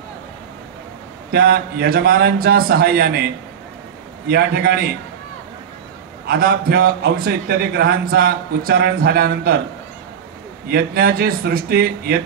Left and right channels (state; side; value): quieter; left; 8.1 dB